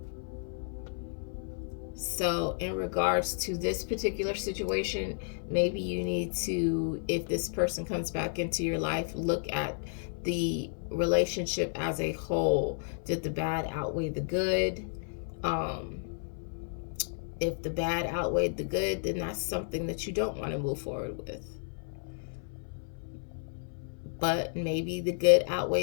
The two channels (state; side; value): silent; right; 56 dB below the other